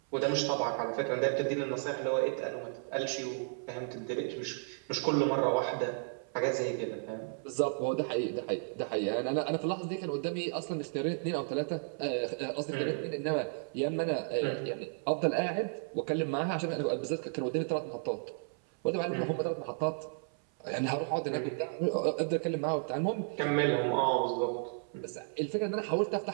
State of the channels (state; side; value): silent; left; 56 dB below the other